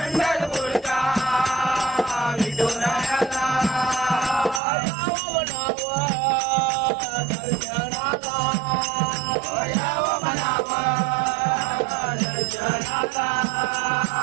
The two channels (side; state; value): left; drops out; at 4.6 s